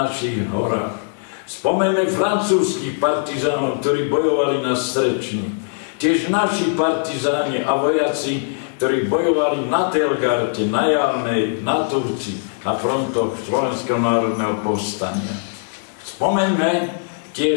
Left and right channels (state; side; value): silent; right; digital silence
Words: horách. Spomeňme francúzskych partizánov, ktorí bojovali na Strečni. Tiež naši partizáni a vojaci, ktorí bojovali na Telgarte, na Jarnej, na Turci, na frontoch Slovenského národného povstania. Spomeňme